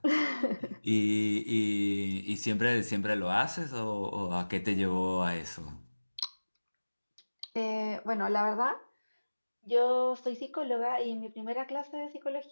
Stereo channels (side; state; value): both; inverted; correlation -1.00